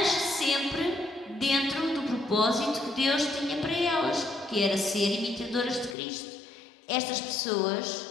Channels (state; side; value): drops out; right; at 6.0 s